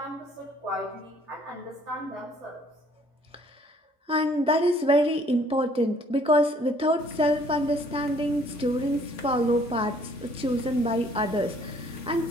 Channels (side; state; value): both; normal; correlation 0.60